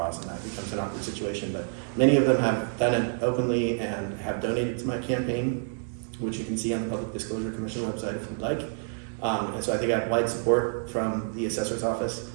and that becomes an awkward situation. But many of them have done it openly and have donated to my campaign, which you can see on the Public Disclosure Commission website if you'd like. And so I think I have wide support from the assessor's office.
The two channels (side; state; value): left; silent; 59 dB below the other